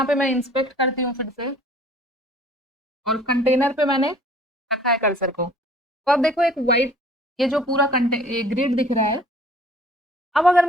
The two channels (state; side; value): normal; both; correlation 0.52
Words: पे मैं इंस्पेक्ट करती हूँ फिर से, और कंटेनर पे मैंने रखा है कर्सर को। तो अब देखो एक वाइट, ये जो पूरा ग्रिड दिख रहा है। अब अगर